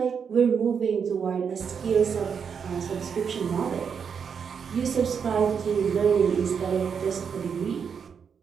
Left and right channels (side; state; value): left; quieter; 6.7 dB